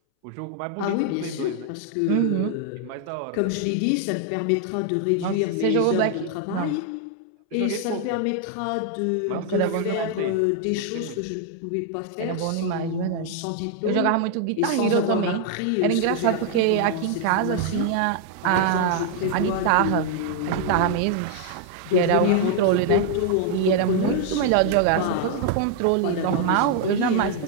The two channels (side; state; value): both; different; correlation 0.00